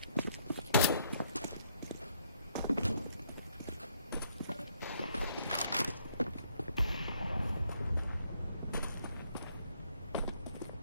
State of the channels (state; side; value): inverted; both; correlation -0.71